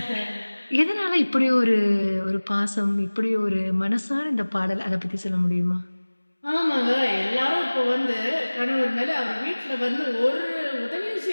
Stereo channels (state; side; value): inverted; both; correlation -1.00